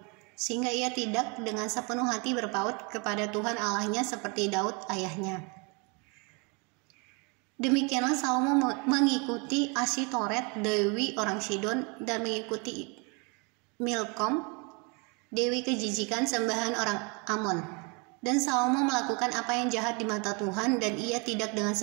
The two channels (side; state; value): left; quieter; 32.0 dB